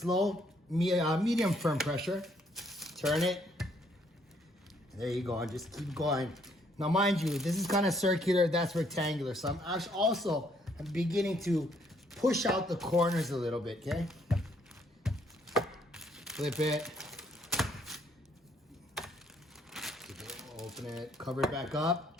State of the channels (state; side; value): normal; both; correlation 0.68